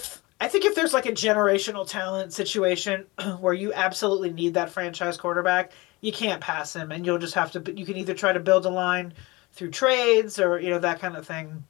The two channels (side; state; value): right; quieter; 23.5 dB